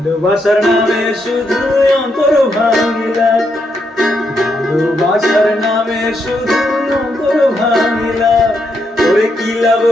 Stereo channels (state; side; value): normal; both; correlation 0.79